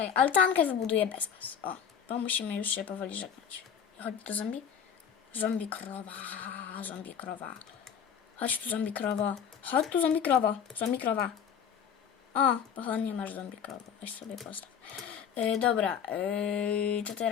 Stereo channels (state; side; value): quieter; right; 7.8 dB